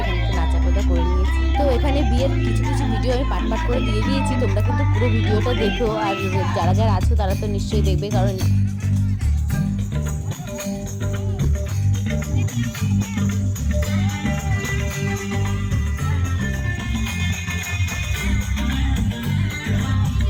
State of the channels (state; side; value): identical; both; correlation 1.00